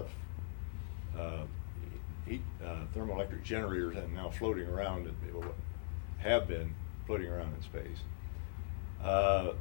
thermoelectric generators and now floating around, have been floating around in space.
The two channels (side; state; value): right; silent; digital silence